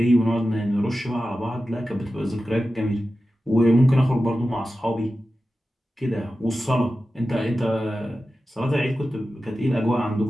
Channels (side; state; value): both; normal; correlation 0.93